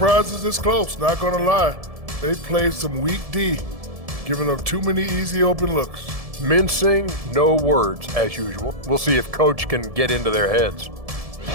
it's this close, not gonna lie. They played some weak D, giving up too many easy open looks. Mincing, no words, as usual. We'll see if Coach can get into their heads.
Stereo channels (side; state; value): left; late; 1.7 ms